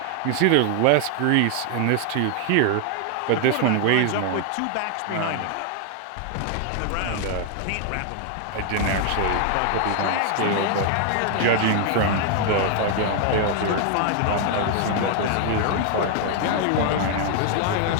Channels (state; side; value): different; both; correlation 0.00